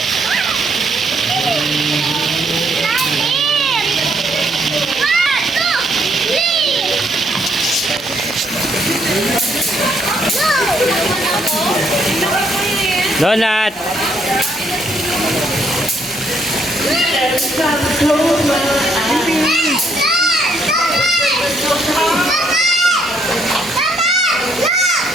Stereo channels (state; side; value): normal; both; correlation 0.71